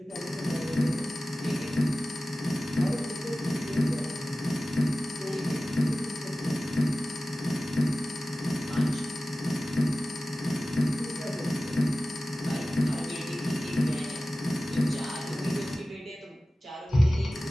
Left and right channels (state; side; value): normal; both; correlation 0.96